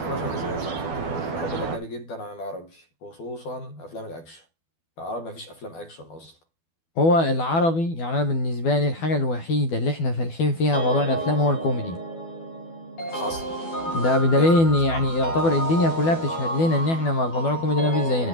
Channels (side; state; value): right; late; 12 ms